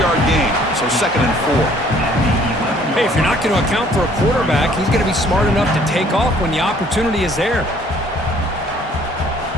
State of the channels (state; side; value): normal; both; correlation 0.59